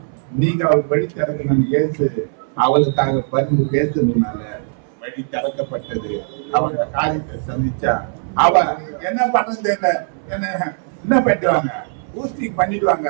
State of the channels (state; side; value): silent; left; 66 dB below the other